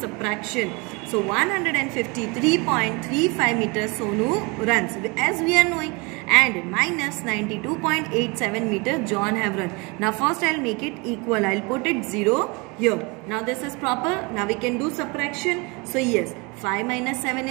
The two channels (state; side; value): quieter; left; 27.9 dB